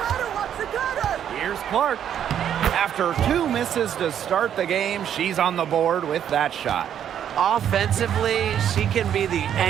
Here's Clark. After 2 misses to start the game, she's on the board with that shot. Offensively, she can be the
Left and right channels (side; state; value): left; quieter; 9.5 dB